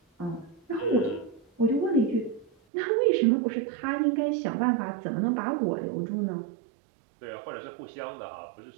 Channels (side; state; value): left; drops out; at 2.5 s